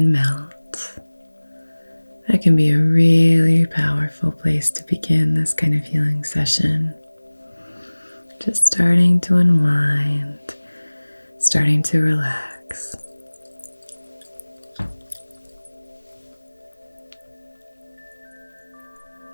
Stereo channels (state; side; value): inverted; both; correlation -1.00